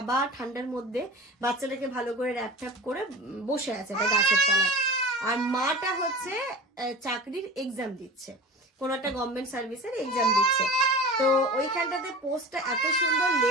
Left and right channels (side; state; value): both; normal; correlation 0.36